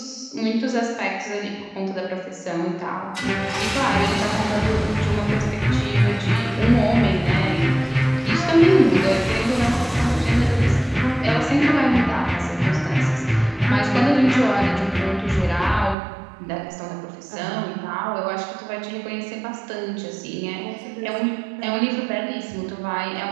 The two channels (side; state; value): left; drops out; at 16.0 s